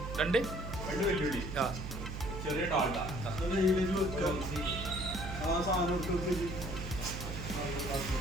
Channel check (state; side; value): noise; right; hum, 7 dB below the sound